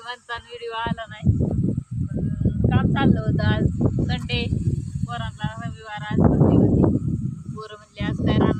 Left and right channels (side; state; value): both; identical; correlation 1.00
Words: म्हणता व्हिडिओ आला नाही. काम चाललं होतं. आज संडे, पोरांना रविवार, आज सुट्टी होती. पोरं म्हणले आज काय